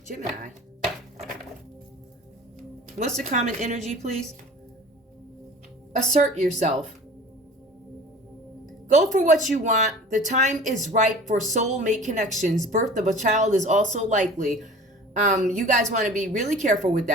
Gemini. What's the common energy, please? Assert yourself. Go for what you want. The time is right for soulmate connections. Birth of a child is also likely. You guys want to be really careful with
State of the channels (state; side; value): normal; both; correlation 0.42